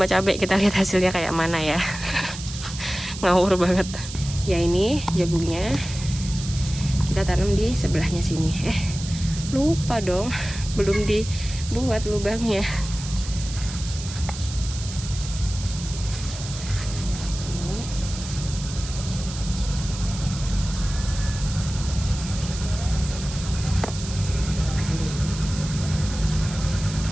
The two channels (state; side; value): noise; right; hiss, 11 dB below the sound